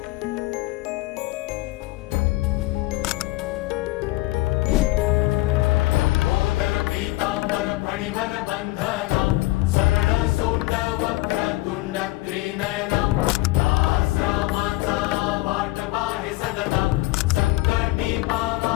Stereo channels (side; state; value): right; quieter; 19.6 dB